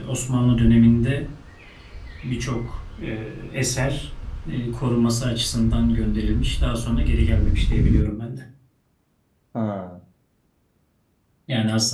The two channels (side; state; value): both; identical; correlation 1.00